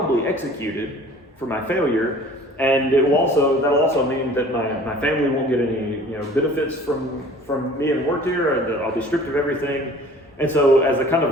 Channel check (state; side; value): normal; both; correlation 0.48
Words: executed for my failure. And that'll also mean that my family won't get any benefits from me and work here, and I'll be stripped of everything. And so, as a kind